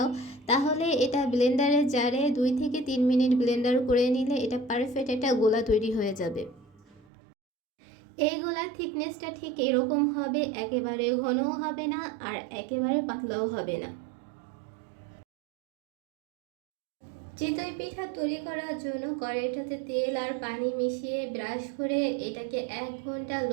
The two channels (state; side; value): drops out; left; at 7.1 s